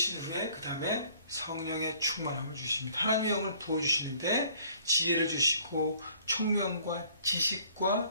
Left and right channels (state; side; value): inverted; both; correlation -0.57